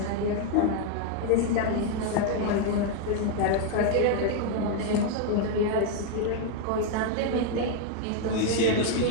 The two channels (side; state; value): both; different; correlation 0.00